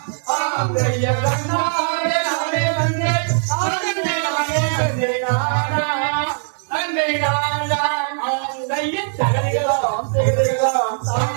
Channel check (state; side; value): silent; left; 66 dB below the other